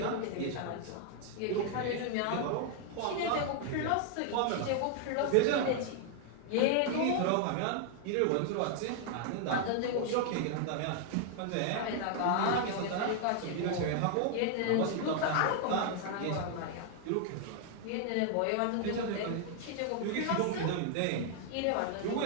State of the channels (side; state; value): both; different; correlation 0.00